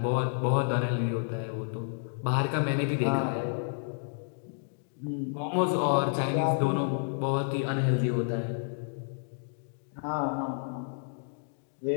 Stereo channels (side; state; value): right; silent; digital silence